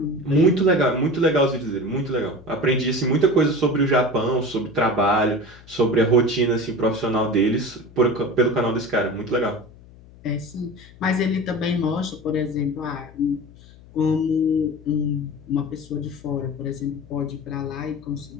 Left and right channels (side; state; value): left; noise; hum, 22 dB below the sound